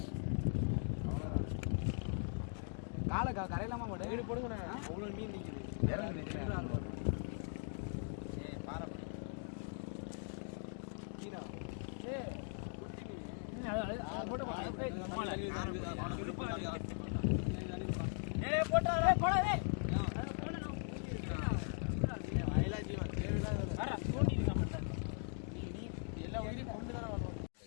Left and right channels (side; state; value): right; silent; 51 dB below the other